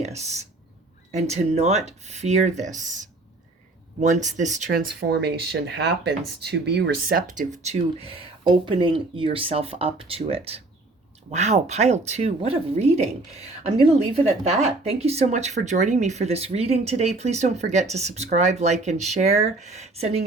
and to not fear this. Once this transformation happens, to be receptive to opening yourself up to it. Wow, pile 2, what a reading. I'm going to leave it at that. Thank you so much for joining me for this reading today. Please don't forget to subscribe, like, and share. Sending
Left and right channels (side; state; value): left; quieter; 3.0 dB